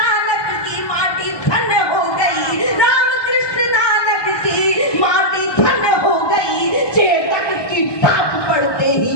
की माटी धन्य हो गई। रामकृष्ण नानक की माटी धन्य हो गई। चेतक की ताप पड़ते ही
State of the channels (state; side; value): late; right; 1.2 ms